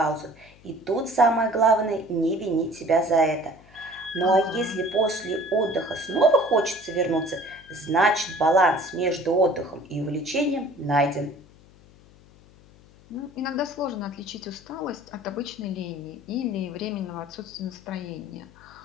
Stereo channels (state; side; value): noise; left; hum, 25 dB below the sound